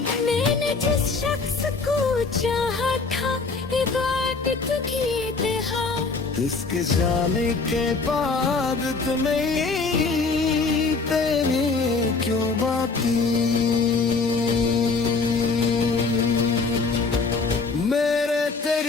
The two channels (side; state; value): right; quieter; 4.2 dB